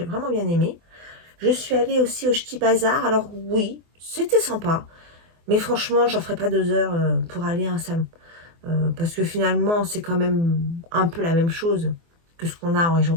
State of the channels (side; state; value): left; late; 24 ms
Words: vraiment bien aimé. Je suis allée aussi au Ch'ti Bazar. Alors oui, c'était sympa. Mais franchement, j'en ferai pas 2 heures pour aller à un salon. Parce que finalement, c'est quand même un peu la même chose que ce qu'on a en région